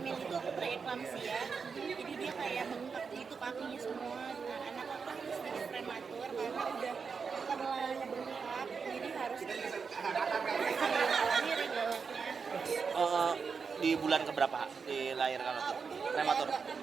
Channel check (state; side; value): quieter; left; 5.5 dB